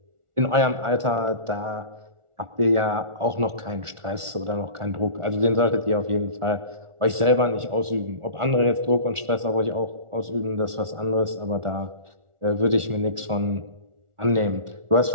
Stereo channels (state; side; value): late; left; 1.4 ms